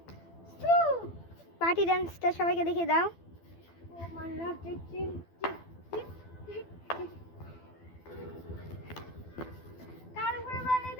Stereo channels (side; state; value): right; late; 12 ms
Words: পার্টি ডান্সটা সবাইকে দেখিয়ে দাও।